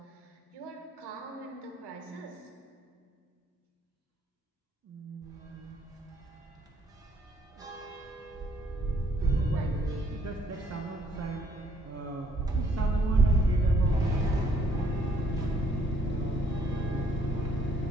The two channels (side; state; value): both; normal; correlation 0.66